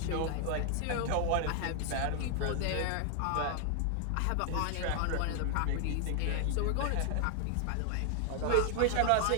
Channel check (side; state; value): both; different; correlation 0.00